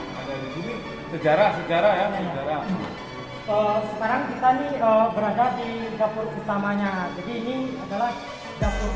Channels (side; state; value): both; identical; correlation 1.00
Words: ada di sini. Sejarah ya, sejarah. Sekarang kita nih berada di dapur utamanya. Jadi ini adalah dapur